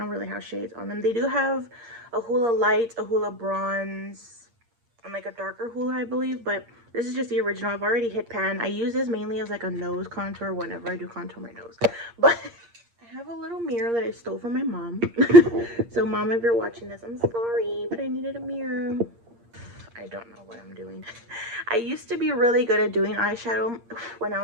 really have shades on them. They do have a Hoola Light, a Hoola Bronze, and like a darker Hoola, I believe, but this is just the original. I've already hit pan. I use this mainly as like a nose contour whenever I do contour my nose. But I have a little mirror that I stole from my mom. So mom, if you're watching this, I'm sorry, but I needed a mirror. I don't know what I'm doing. I used to be really good at doing eyeshadow when I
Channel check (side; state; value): left; late; 8.6 ms